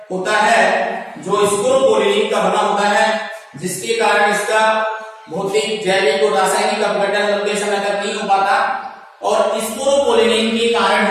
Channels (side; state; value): both; identical; correlation 1.00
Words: होता है, जो स्पोरोपोलिन का बना होता है, जिसके कारण इसका भौतिक, जैविक और रासायनिक अपघटन लंबे समय तक नहीं हो पाता। और स्पोरोपोलिन के कारण